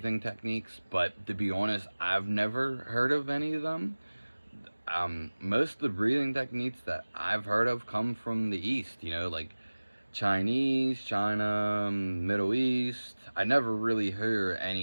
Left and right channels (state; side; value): inverted; both; correlation -1.00